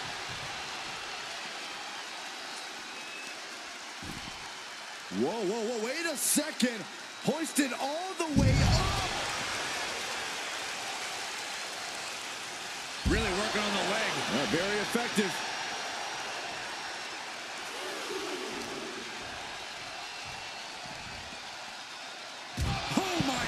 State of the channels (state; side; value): identical; both; correlation 1.00